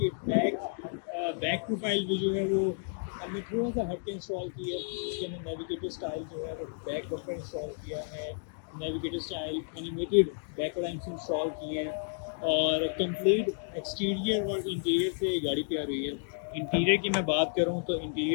बैक प्रोफाइल भी जो है वो हमने थोड़ा सा हट के इंस्टॉल की है। इसके अंदर नेविगेटर स्टाइल जो है वो बैक बम्पर इंस्टॉल किया है, navigator style animated back lamps install किए हैं और कंप्लीट एक्सटीरियर और इंटीरियर से गाड़ी तैयार हुई है। इंटीरियर की मैं बात करूं तो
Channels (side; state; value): right; silent; digital silence